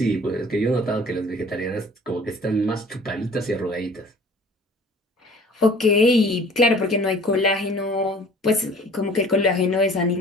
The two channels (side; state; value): both; normal; correlation 0.49